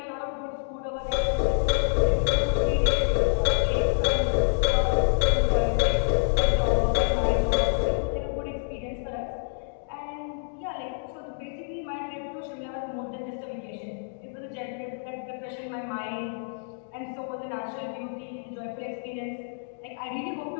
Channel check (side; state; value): right; silent; digital silence